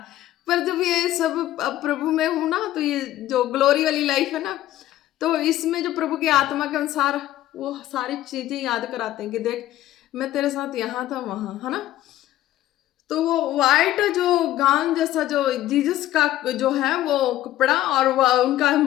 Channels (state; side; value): quieter; right; 14.0 dB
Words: पर जब ये सब अब प्रभु में हूँ ना, तो ये जो ग्लोरी वाली लाइफ है ना, तो इसमें जो प्रभु की आत्मा के अनुसार वो सारी चीज़ें याद कराते हैं कि देख मैं तेरे साथ यहाँ था वहाँ, है ना। तो वो वाइट जो गाउन जैसा जो जीसस का जो है वो कपड़ा, और उनका